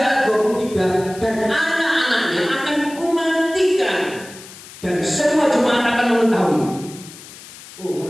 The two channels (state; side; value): noise; left; hiss, 17 dB below the sound